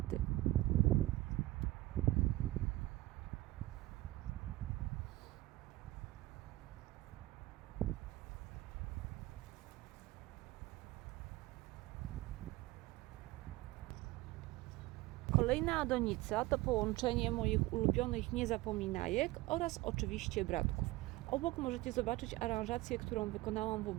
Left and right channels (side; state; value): left; quieter; 18.5 dB